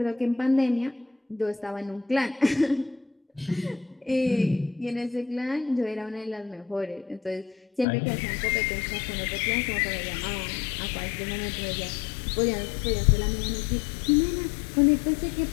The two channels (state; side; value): drops out; right; at 7.9 s